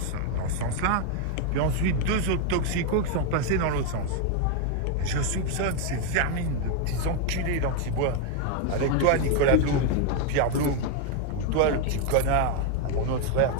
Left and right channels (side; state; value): both; different; correlation 0.01